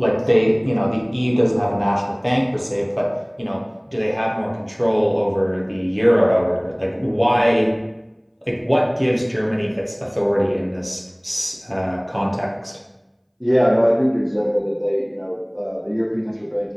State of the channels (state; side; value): identical; both; correlation 1.00